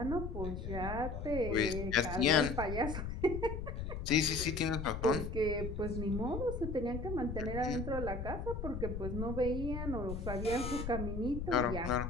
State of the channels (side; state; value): left; noise; rumble, 5 dB below the sound